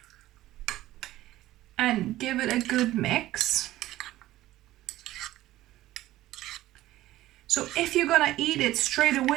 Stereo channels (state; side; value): quieter; left; 15.6 dB